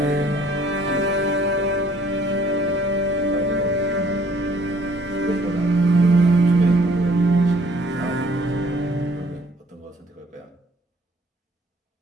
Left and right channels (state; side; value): normal; both; correlation 0.59